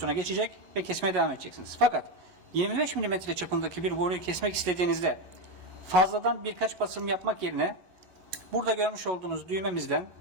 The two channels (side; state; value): left; late; 11 ms